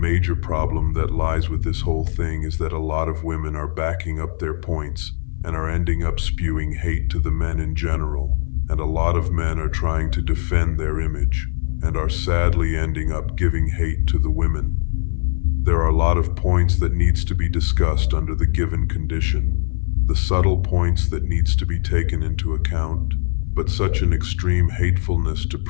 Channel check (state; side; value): silent; right; 57 dB below the other